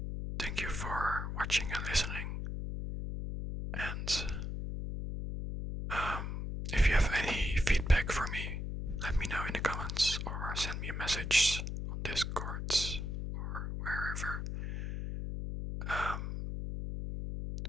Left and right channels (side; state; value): left; noise; hum, 4 dB below the sound